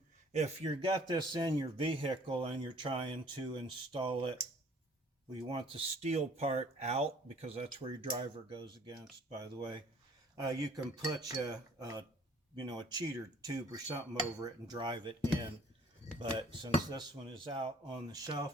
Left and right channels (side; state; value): both; normal; correlation 0.55